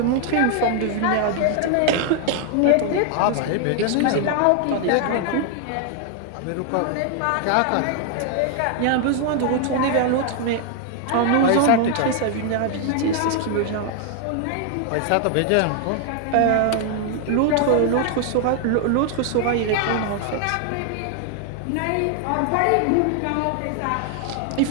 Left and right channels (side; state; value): both; different; correlation 0.00